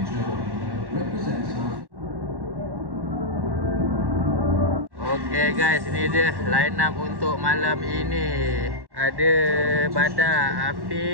Okay guys, ini dia line up untuk malam ini. Ada Badar,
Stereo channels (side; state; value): left; late; 1.1 ms